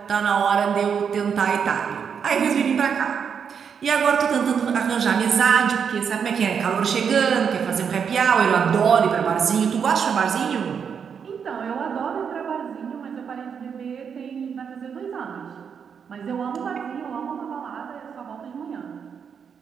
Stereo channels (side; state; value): left; quieter; 7.0 dB